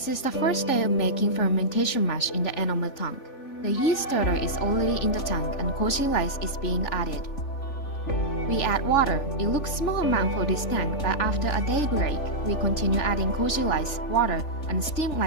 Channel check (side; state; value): right; late; 3.4 ms